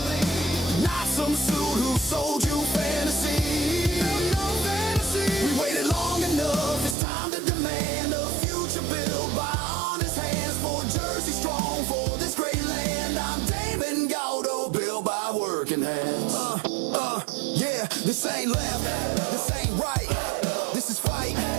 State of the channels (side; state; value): left; drops out; at 7.0 s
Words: Not some suit who sold you fantasy. We waited long enough, it's time to demand a future built by honest hands. For Jersey strong, for this great land. I'm Damon Galdo, built by working hands. Yeah, this ain't left, this ain't right. This is fight